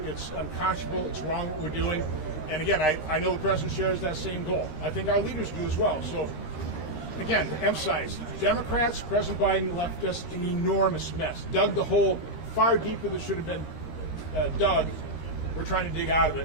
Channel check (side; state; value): right; late; 13 ms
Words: It's unconscionable. It's wrong what we're doing. And again, I know the president shares that same goal. I think our leaders do as well. So again, to emphasize, Democrats, President Biden left us an enormous mess, dug the hole far deeper than should have been dug. We're trying to dig out of